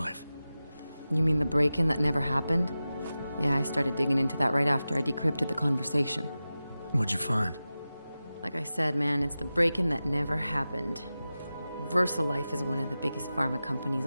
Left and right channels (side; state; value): both; inverted; correlation -0.94